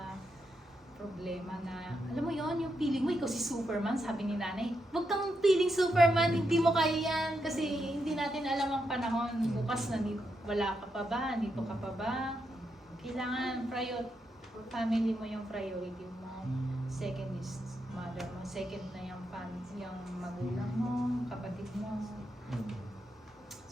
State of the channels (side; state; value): both; normal; correlation 0.83